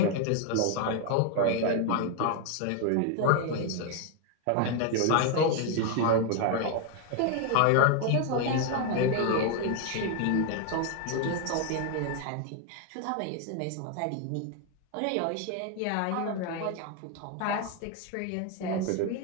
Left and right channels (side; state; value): both; different; correlation 0.01